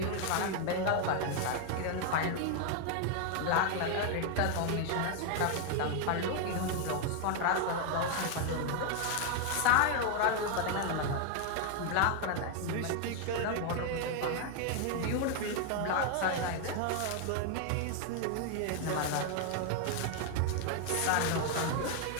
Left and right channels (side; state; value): both; different; correlation 0.01